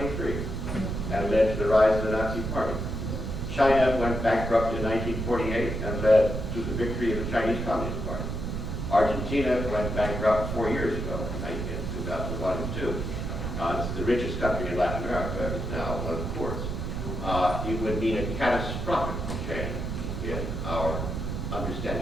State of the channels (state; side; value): noise; right; rumble, 3 dB below the sound